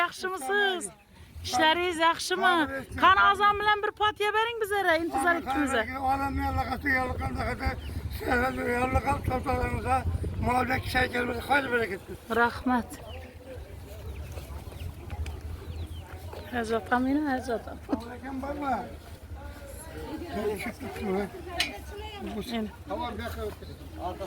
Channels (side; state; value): both; identical; correlation 1.00